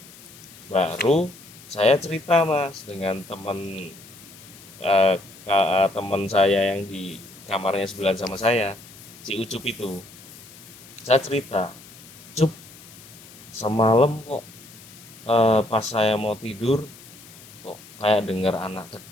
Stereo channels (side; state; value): left; noise; hiss, 20 dB below the sound